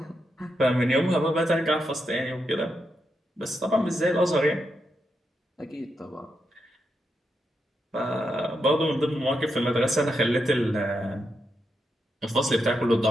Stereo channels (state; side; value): normal; both; correlation 0.84